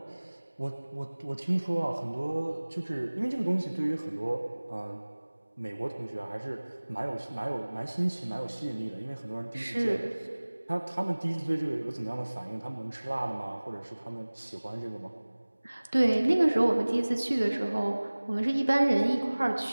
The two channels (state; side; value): inverted; both; correlation -1.00